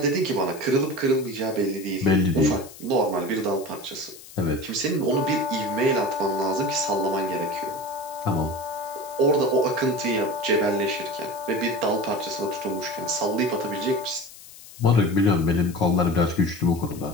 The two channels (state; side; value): noise; left; hiss, 18 dB below the sound